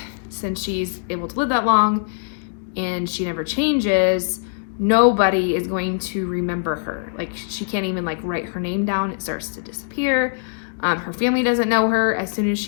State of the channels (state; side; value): silent; right; digital silence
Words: since she's able to live that long and she never changes, nobody is going to remember her. Like she can't even like write her name down. It starts to disappear. Her family doesn't know her. As soon as